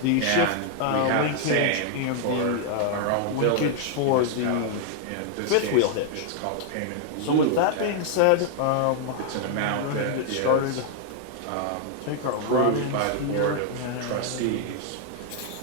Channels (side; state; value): both; different; correlation 0.00